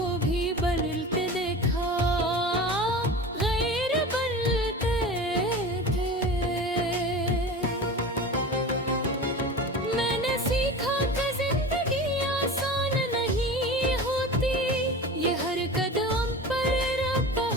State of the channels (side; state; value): both; normal; correlation 0.33